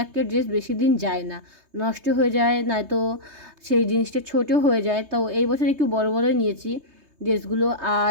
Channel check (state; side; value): late; left; 3.2 ms